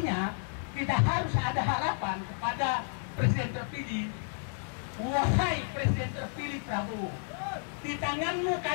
kita harus ada harapan kepada Presiden terpilih. Wahai Presiden terpilih Prabowo, di tanganmu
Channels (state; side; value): silent; right; 57 dB below the other